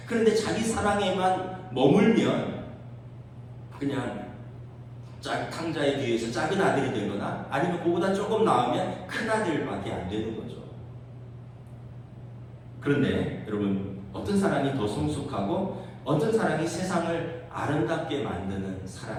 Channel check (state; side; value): identical; both; correlation 1.00